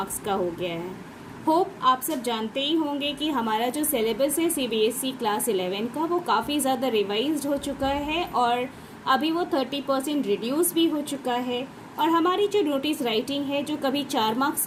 का हो गया है। होप आप सब जानते ही होंगे कि हमारा जो सिलेबस है सीबीएसई क्लास 11 का, वो काफ़ी ज़्यादा रिवाइज्ड हो चुका है और अभी वो 30% रिड्यूस भी हो चुका है। और हमारी जो नोटिस राइटिंग है, जो कभी 4 मार्क्स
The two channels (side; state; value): both; identical; correlation 1.00